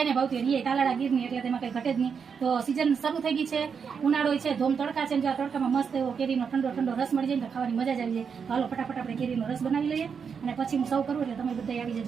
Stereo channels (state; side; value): quieter; left; 6.4 dB